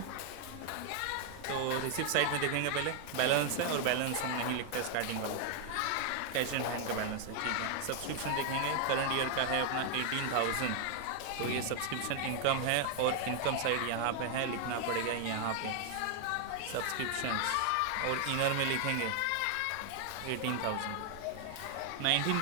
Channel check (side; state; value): both; different; correlation 0.00